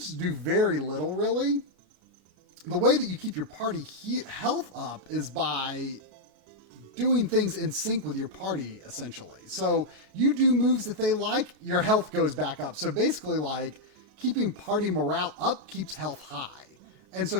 do very little really. The way that you keep your party health up is by doing things in sync with your party, essentially. So you do moves that they like, your health goes back up. So basically like keeping party morale up keeps health high. And so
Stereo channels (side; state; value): left; late; 37 ms